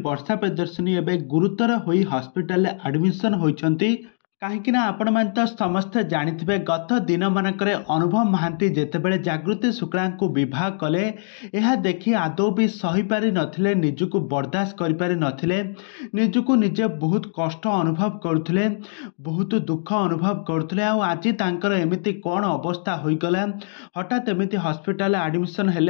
वर्षा प्रियदर्शिनी एवं गुरुतर होई हॉस्पिटल एडमिशन होइछंती। कहीं आपण मैंने तो समस्ते जानिथिबे गत दिन मानकर अनुभव महांती जेतेबेले जागृति शुक्ला को विवाह कले यह देखि आदौ भी सही पारि नथिले, निजको बर्दाश्त करि पारि नथिले, निजको निजे बहुत कष्ट अनुभव करुथिले, बहुत दुख अनुभव करुथिले। आ आज तांकर एमिति कोन अवस्था होइगला, हठात एमिति हॉस्पिटल एडमिशन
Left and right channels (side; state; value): right; silent; digital silence